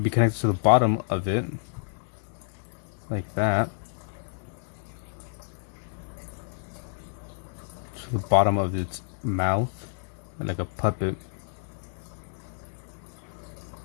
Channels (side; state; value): right; silent; digital silence